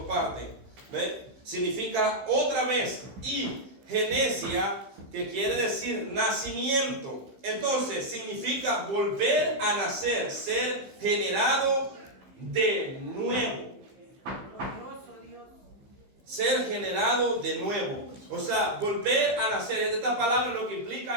partes. ¿Ve? Significa otra vez. Y genesia, que quiere decir nacimiento. Entonces significa volver a nacer, ser generado de nuevo. Ser generado de nuevo. O sea, volver a nacer. Esta palabra lo que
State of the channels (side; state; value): left; late; 15 ms